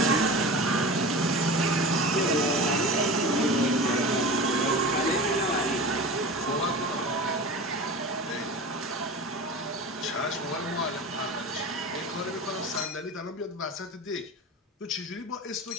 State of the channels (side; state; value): both; normal; correlation 0.32